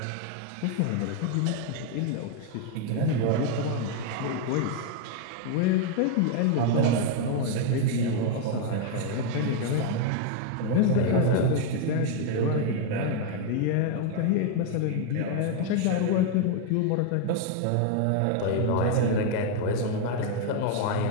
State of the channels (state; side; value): different; both; correlation 0.00